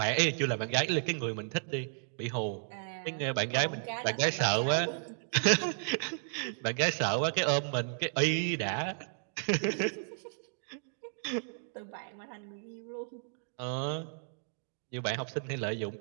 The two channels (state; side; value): silent; left; digital silence